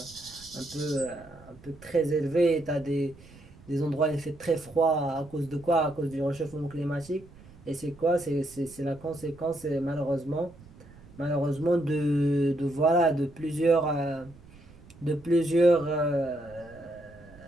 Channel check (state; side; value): noise; right; rumble, 22 dB below the sound